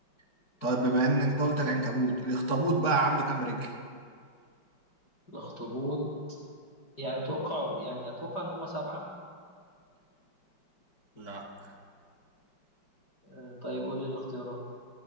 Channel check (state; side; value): late; right; 4.6 ms